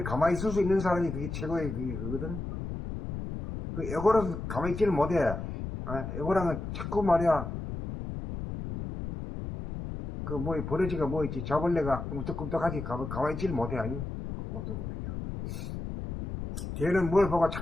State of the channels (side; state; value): left; noise; rumble, 6 dB below the sound